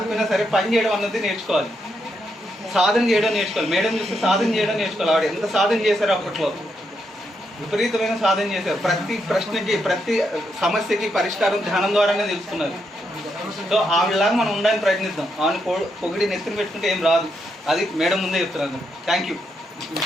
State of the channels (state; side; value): normal; both; correlation 0.80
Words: సరే పని చేయడం అన్నది నేర్చుకోవాలి, సాధన చేయడం నేర్చుకోవాలి. మేడం చూస్తే సాధన చేయడం నేర్చుకోవాలి. ఆవిడ ఎంత సాధన చేశారు, అప్పట్లో విపరీతమైన సాధన చేశారు. ప్రతి ప్రశ్నకి ప్రతి సమస్యకి పరిష్కారం ధ్యానం ద్వారానే తెలుసుకున్నారు. సో ఆవిడలాగా మనం ఉండడానికి ప్రయత్నిద్దాం. ఆమెను పొగిడి నెత్తిన పెట్టుకుంటే ఏం రాదు, అది మేడం ముందే చెప్తున్నారు. Thank you.